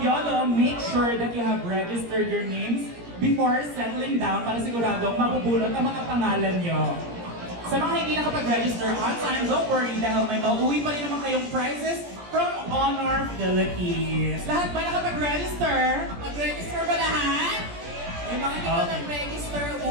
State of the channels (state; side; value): late; left; 17 ms